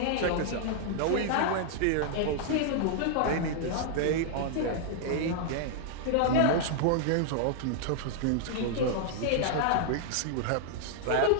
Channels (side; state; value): both; different; correlation -0.01